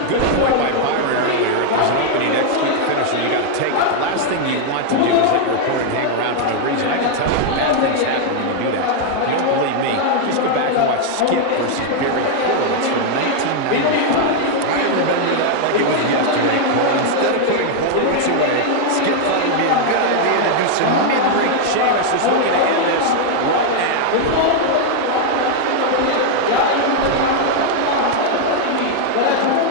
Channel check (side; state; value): both; different; correlation 0.00